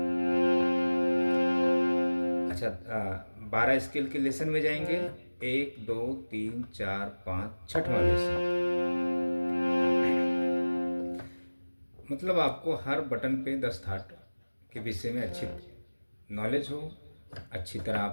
अच्छा, 12 स्केल के लेसन में जाएंगे 1 2 3 4 5, छठवां लेसन। मतलब आपको हर बटन पे 10 थाट के विषय में अच्छी नॉलेज हो, अच्छी तरह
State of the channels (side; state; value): both; inverted; correlation -1.00